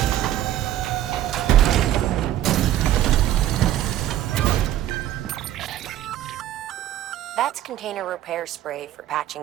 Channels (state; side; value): quieter; left; 12.6 dB